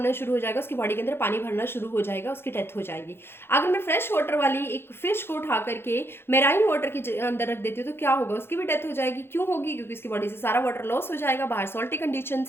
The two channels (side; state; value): right; late; 0.11 ms